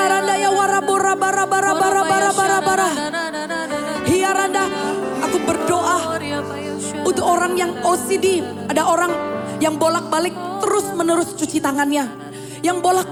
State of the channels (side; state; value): both; identical; correlation 1.00